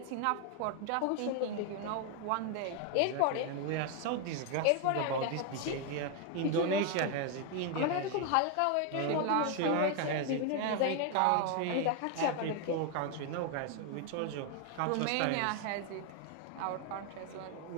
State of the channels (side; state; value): both; different; correlation 0.00